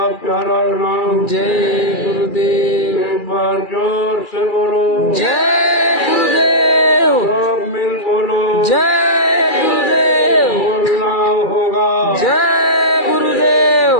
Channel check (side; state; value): right; late; 2.3 ms